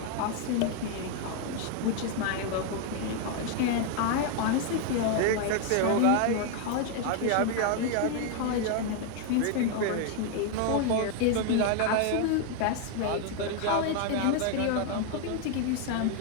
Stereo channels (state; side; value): different; both; correlation 0.01